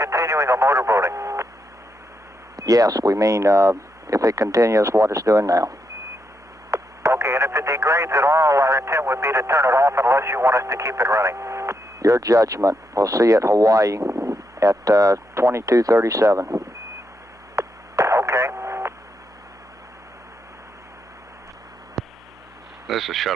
a motorboating? Yes, we mean if it continues what it's doing now. Okay, and if it degrades at all, our intent would be to turn it off unless you want us to keep it running. Your judgment. We'll see you at Hawaii at 2237. Okay. This is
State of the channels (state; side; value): normal; both; correlation 0.81